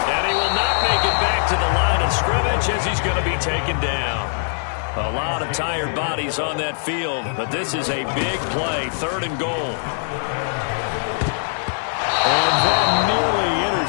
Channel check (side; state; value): right; silent; 60 dB below the other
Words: and he will not make it back to the line of scrimmage as he's going to be taken down. A lot of tired bodies on that field, but this is a big play, third and goal. And that nearly